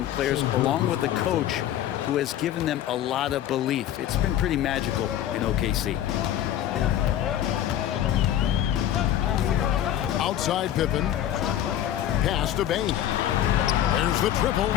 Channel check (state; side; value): quieter; right; 11.6 dB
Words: players, along with a coach who has given them a lot of belief. It's been pretty magical in OKC. Outside Pippen. Pass to Bane. There's the triple.